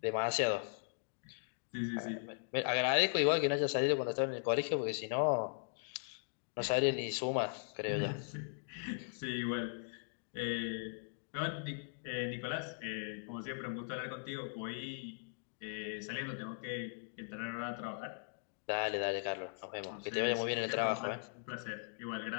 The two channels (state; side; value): silent; right; digital silence